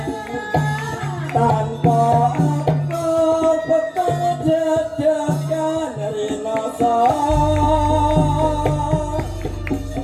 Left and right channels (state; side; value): identical; both; correlation 1.00